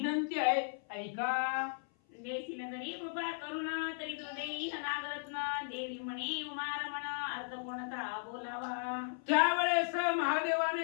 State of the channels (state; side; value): silent; right; 54 dB below the other